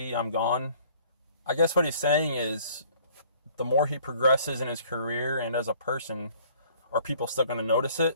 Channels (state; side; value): inverted; both; correlation -0.56